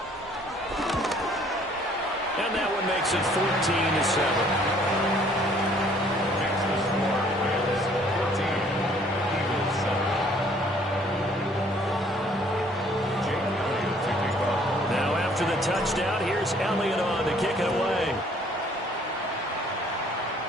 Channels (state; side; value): normal; both; correlation 0.59